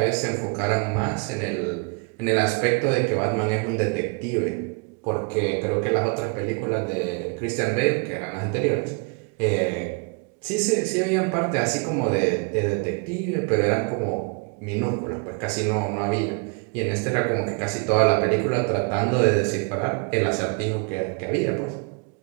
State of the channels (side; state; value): left; quieter; 33.3 dB